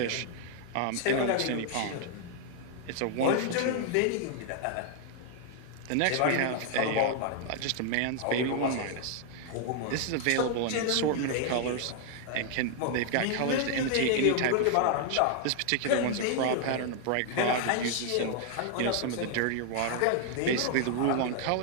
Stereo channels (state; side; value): different; both; correlation 0.00